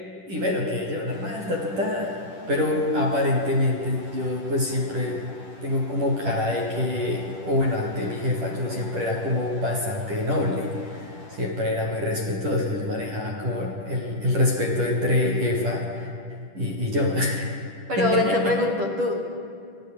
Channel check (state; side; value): late; left; 10 ms